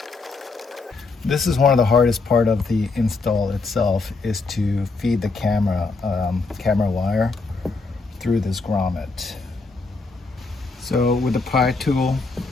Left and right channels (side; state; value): right; quieter; 3.9 dB